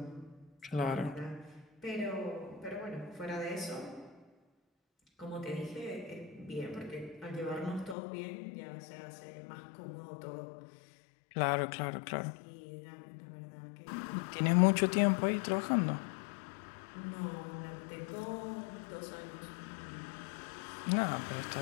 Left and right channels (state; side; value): drops out; right; at 8.0 s